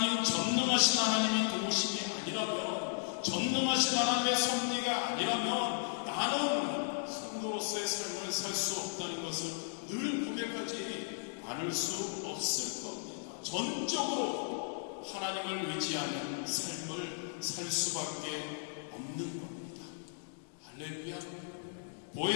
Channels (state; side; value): silent; right; digital silence